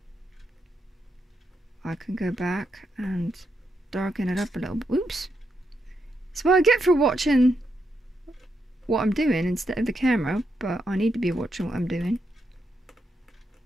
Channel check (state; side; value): normal; both; correlation 0.82